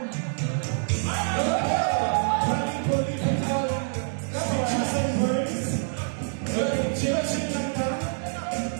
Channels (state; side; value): silent; left; digital silence